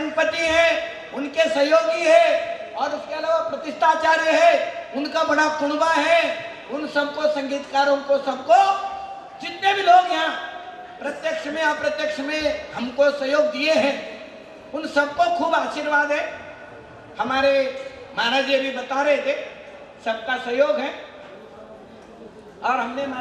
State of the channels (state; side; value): identical; both; correlation 1.00